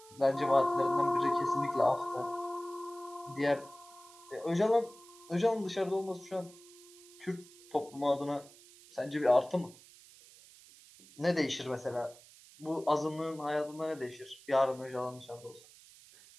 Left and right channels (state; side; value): noise; right; hiss, 22 dB below the sound